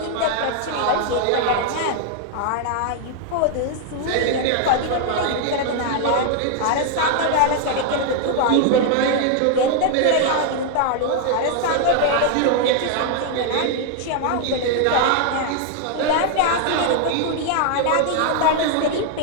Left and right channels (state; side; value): different; both; correlation 0.00